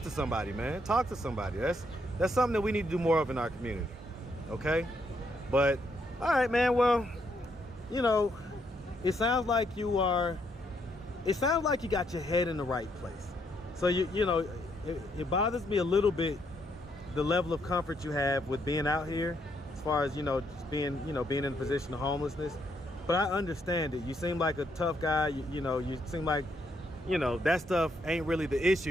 to somebody, man. Talk to somebody. That's something that we need to do more of in our community. Okay? But all right, man. Well, you know, it sounds like you got your head in the right place. So you know, it bothers me a little bit, the level of comfort you have with being out here, as far as, you know, just being in a position of homelessness. But I understand it. You seem like a tough guy. You know, you seem like, you know, that stuff ain't really the issue.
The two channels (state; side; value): normal; both; correlation 0.74